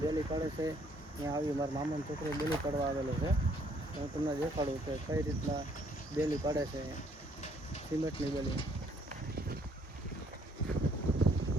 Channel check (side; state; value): both; normal; correlation 0.65